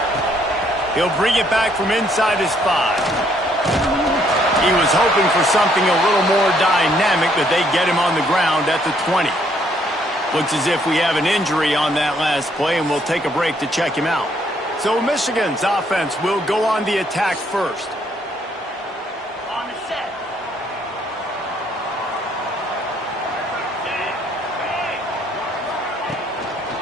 He'll bring it back from inside his 5. He was hoping for something a little more dynamic, but they get him on the ground at the 20. Looks as if we have an injury on that last play, and we'll take a break to check him out. So Michigan's offense will go on the attack first. On the set.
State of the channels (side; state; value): both; normal; correlation 0.68